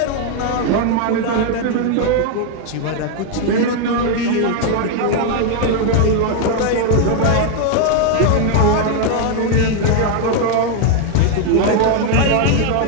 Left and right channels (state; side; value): different; both; correlation 0.00